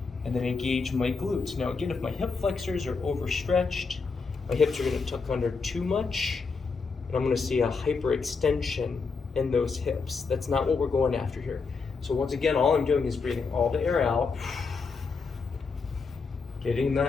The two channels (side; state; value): right; quieter; 4.8 dB